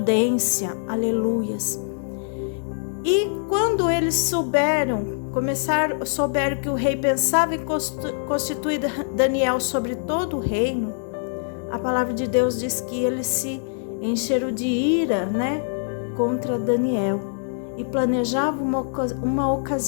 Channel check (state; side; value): silent; right; digital silence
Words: aleluias. E quando eles souberam que o rei pensava em constituir Daniel sobre todo o reino, a palavra de Deus diz que eles se encheram de ira, né, contra Daniel, e planejavam uma